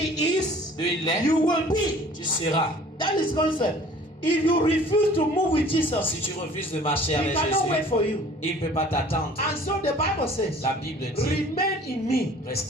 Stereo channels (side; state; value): both; normal; correlation 0.50